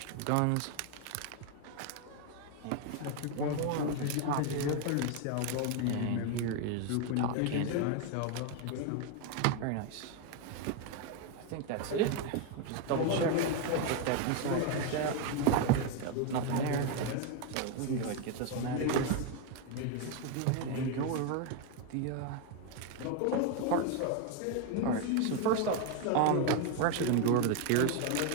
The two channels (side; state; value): both; different; correlation 0.01